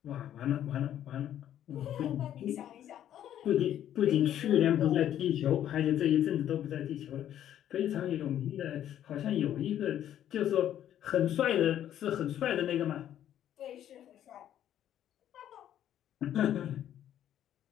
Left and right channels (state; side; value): quieter; right; 11.0 dB